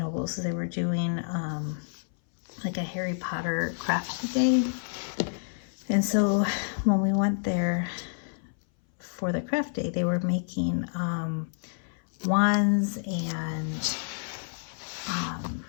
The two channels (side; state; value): right; silent; 59 dB below the other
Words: so they were doing like a Harry Potter craft day. And so when we went there for the craft day, they were making wands and